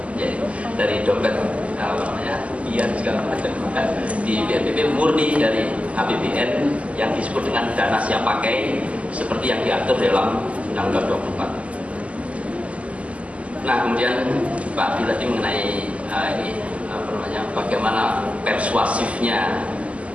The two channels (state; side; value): late; left; 0.064 ms